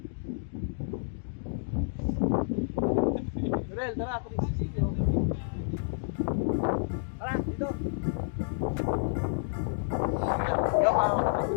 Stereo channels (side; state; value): right; silent; digital silence